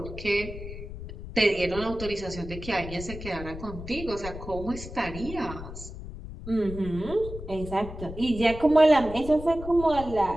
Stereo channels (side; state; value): left; noise; rumble, 11 dB below the sound